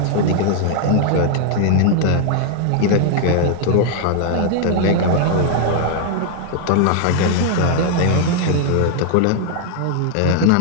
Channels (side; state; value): both; different; correlation 0.00